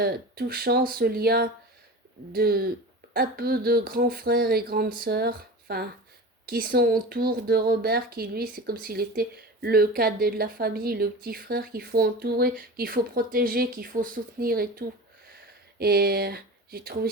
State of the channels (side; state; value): both; normal; correlation 0.32